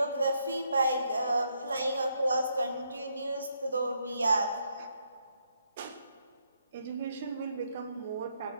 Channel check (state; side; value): inverted; both; correlation -0.76